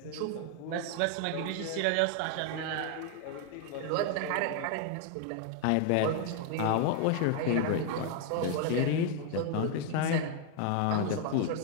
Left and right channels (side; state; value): both; different; correlation 0.00